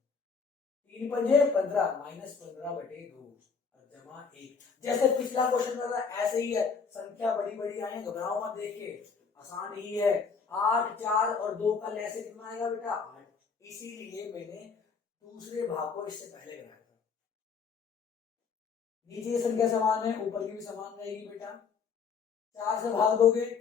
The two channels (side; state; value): right; quieter; 5.6 dB